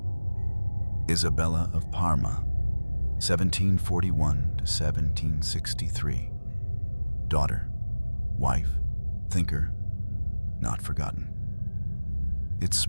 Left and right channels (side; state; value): both; inverted; correlation -1.00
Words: Isabella of Parma, 1741 to 1763. Daughter, wife, thinker, not forgotten. It's